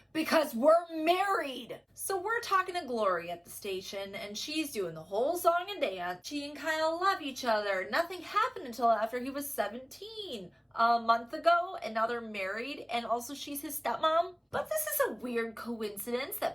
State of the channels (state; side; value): identical; both; correlation 1.00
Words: because we're married. So we're talking to Gloria at the station and she's doing the whole song and dance. She and Kyle love each other. Nothing happened until after he was 17 a month ago and now they're married and also she's his stepmom. But this is a weird coincidence